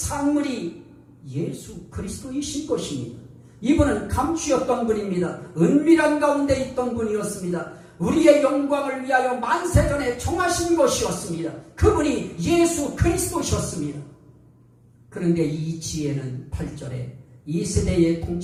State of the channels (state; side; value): identical; both; correlation 1.00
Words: 예수 그리스도이신 것입니다. 이분은 감추었던 분입니다. 은밀한 가운데 있던 분이었습니다. 우리의 영광을 위하여 만세전에 정하신 것이었습니다. 그분이 예수 그리스도셨습니다. 그런데 이 지혜는 8절에 이 세대의